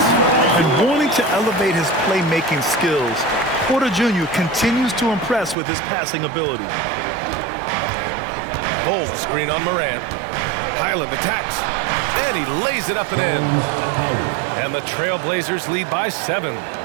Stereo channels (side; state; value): left; drops out; at 5.6 s